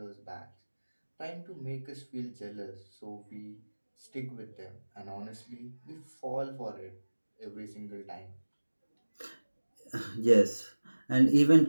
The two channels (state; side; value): inverted; both; correlation -1.00